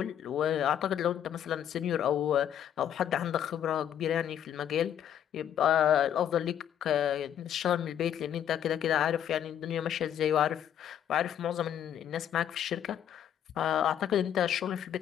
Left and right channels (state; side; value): quieter; right; 9.9 dB